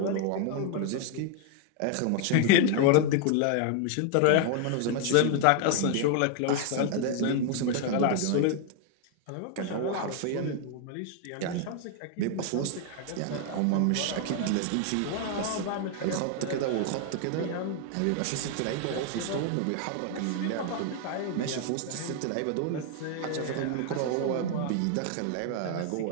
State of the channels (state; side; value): different; both; correlation 0.00